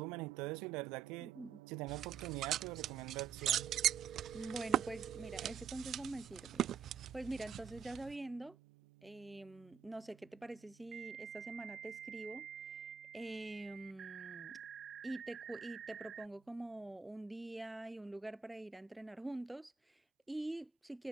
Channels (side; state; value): left; quieter; 7.1 dB